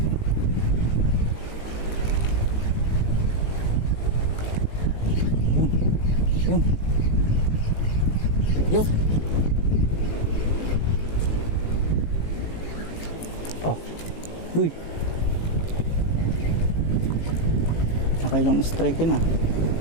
Yun. Uy. Nakailang strike yun ah.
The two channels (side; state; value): right; late; 18 ms